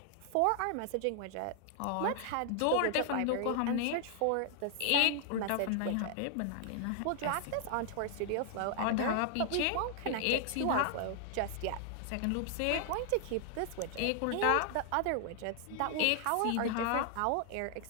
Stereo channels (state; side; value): different; both; correlation 0.00